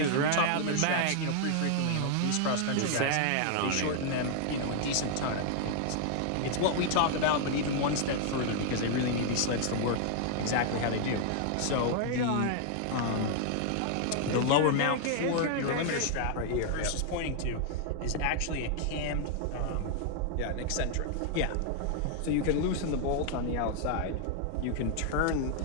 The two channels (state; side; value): different; both; correlation 0.00